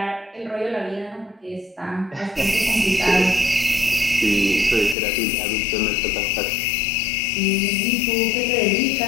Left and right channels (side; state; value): right; drops out; at 5.0 s